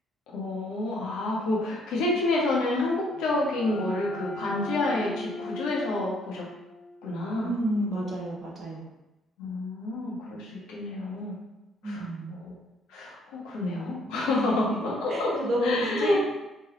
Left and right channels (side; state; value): both; normal; correlation 0.65